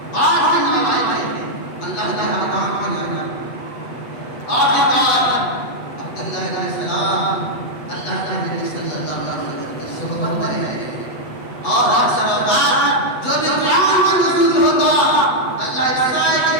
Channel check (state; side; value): late; right; 8.1 ms